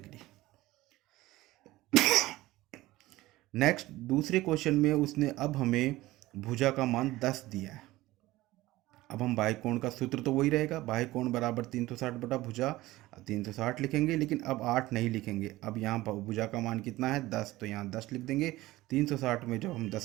नेक्स्ट दूसरे क्वेश्चन में उसने अब हमें भुजा का मान 10 दिया है। अब हम बाह्य कोण का सूत्र तो वही रहेगा, बाह्य कोण बराबर 360 बटा भुजा, 360 लिखेंगे, लेकिन अब 8 नहीं लिखेंगे। अब यहाँ भुजा का मान कितना है 10, तो यहाँ 10 लिख देंगे। 360 में जब हम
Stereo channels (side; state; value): left; quieter; 17.8 dB